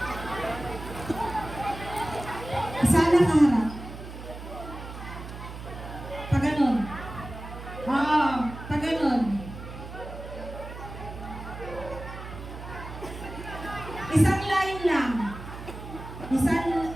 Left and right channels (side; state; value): right; noise; hum, 11 dB below the sound